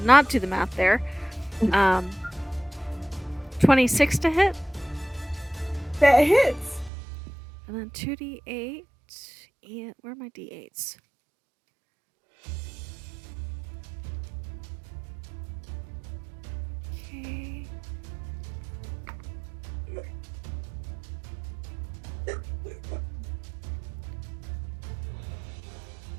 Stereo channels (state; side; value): drops out; left; at 6.9 s